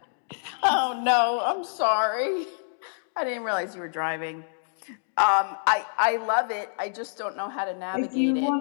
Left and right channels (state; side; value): silent; right; digital silence